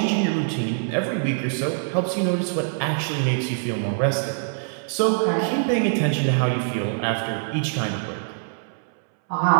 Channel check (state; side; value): silent; left; 63 dB below the other